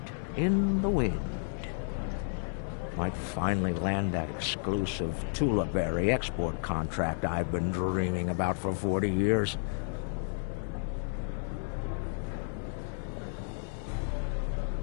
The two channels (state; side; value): silent; right; 56 dB below the other